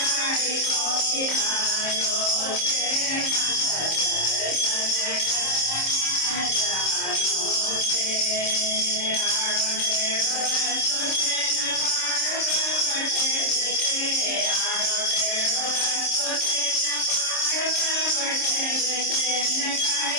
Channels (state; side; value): late; right; 26 ms